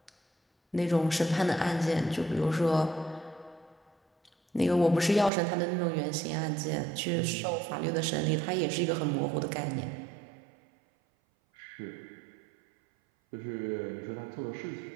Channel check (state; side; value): drops out; left; at 5.3 s